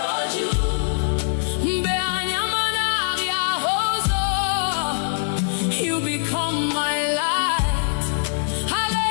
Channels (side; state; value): right; silent; digital silence